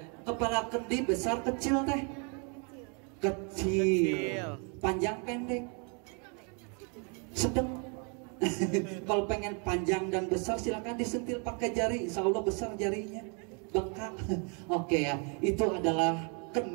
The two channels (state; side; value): quieter; left; 36.7 dB